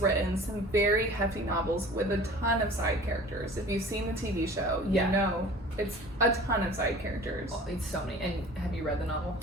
written some very hefty novels with a ton of side characters. If you've seen the TV show, you know it's a ton of side characters. Oh, it's so many. And have you read the novel?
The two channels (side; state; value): both; normal; correlation 0.44